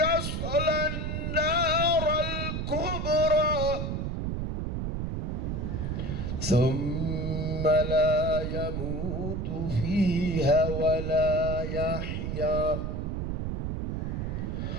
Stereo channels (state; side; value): noise; right; rumble, 2 dB below the sound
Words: النار الكبرى ثم لا يموت فيها ولا يحيا